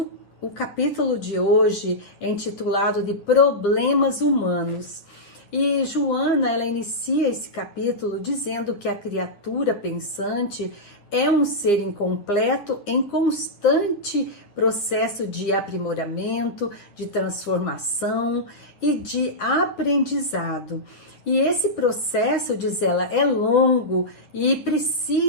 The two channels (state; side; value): late; right; 9.9 ms